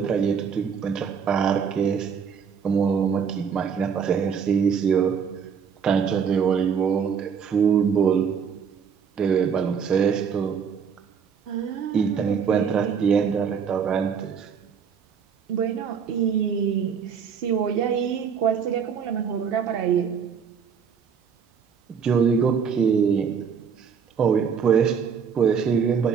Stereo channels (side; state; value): left; quieter; 6.8 dB